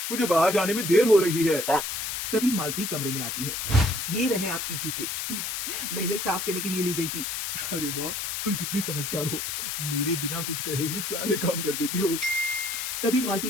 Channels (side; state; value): left; noise; hiss, 3 dB below the sound